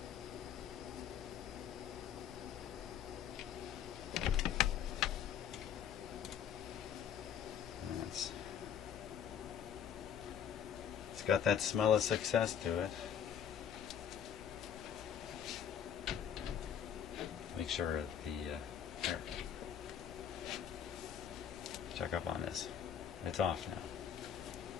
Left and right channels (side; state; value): right; quieter; 8.8 dB